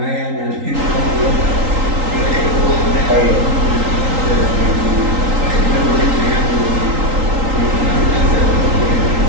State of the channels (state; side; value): late; left; 3.8 ms